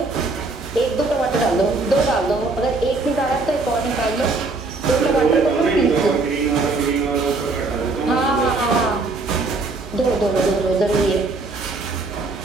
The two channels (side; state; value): left; quieter; 3.5 dB